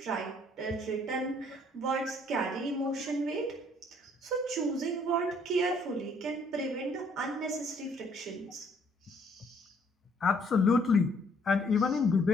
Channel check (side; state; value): both; normal; correlation 0.64